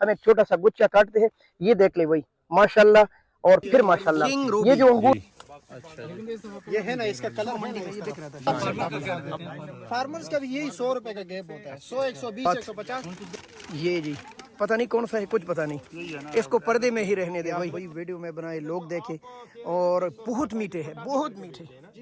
हम एक छोटा सा गुच्छा काटते हैं, ये देख ले भाई माशाल्लाह और फिर माशाल्लाह। ये जो अंगूर ये है ना, इसका कलर मंडी में ये दिख रहा था। फार्मर्स का भी यही 100 रुपए का गैप होता है, 100, 120, 150। ये जी पता नहीं कौन सा है, कुछ पता नहीं, इसको पर्दे में ही रहने दे भाई। वीडियो में बनाए लोग देखे और बहुत मीठे हैं, बहुत मीठे।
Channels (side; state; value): both; identical; correlation 1.00